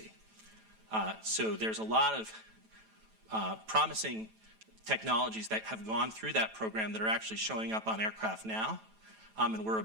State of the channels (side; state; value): left; late; 9.1 ms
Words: So there's a lot of promising technologies that have gone through that program that are actually showing up on aircraft now. And we're